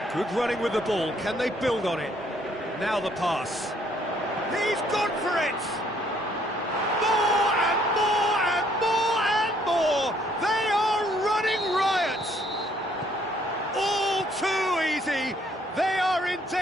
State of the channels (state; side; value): normal; both; correlation 0.65